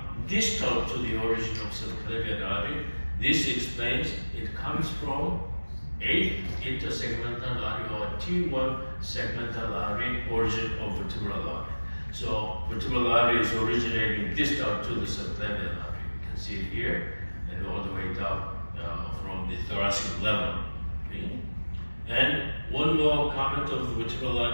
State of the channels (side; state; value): both; inverted; correlation -1.00